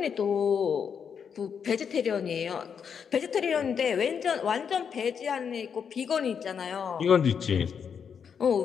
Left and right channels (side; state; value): right; quieter; 7.0 dB